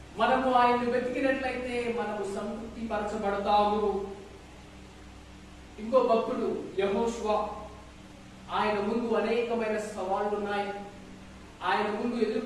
మనము ఆయన్ని వెతికినట్లయితే మనము సంతృప్తి పరచబడతాము. ఇంకో భక్తుడు యెహోషువ, ఆయన ముందు అనేకమైన సవాళ్లు ఉన్నాయి. ఆయన ముందు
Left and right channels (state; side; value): identical; both; correlation 1.00